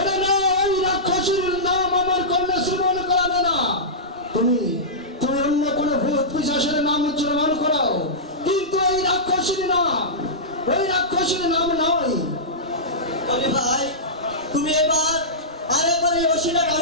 না, ওই রাক্ষসীর নাম আমার কর্ণে শ্রবণ করাবে না। তুমি তুমি অন্য কোনো ভূত পিশাচের নাম উচ্চারণ করাও, কিন্তু ওই রাক্ষসীর নাম নয়। বলি ভাই, তুমি এবার আরেকবার এই ওষিটা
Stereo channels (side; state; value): both; normal; correlation -0.16